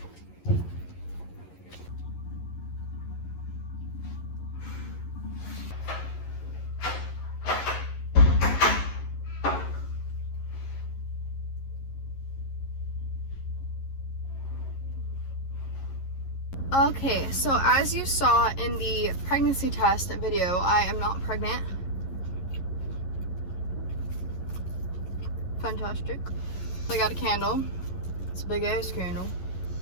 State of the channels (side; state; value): right; late; 11 ms